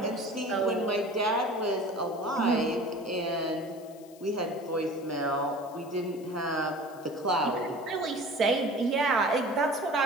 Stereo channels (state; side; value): noise; left; hiss, 24 dB below the sound